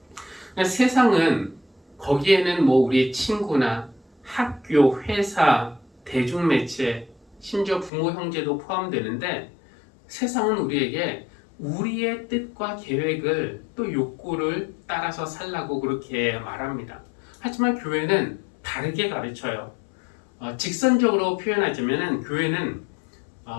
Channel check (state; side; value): drops out; right; at 7.9 s